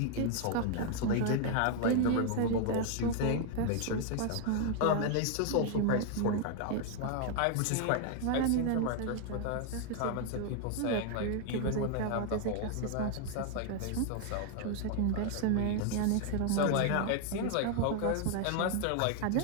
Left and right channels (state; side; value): different; both; correlation 0.00